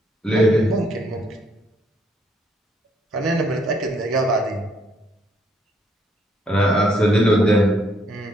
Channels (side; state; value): both; normal; correlation 0.70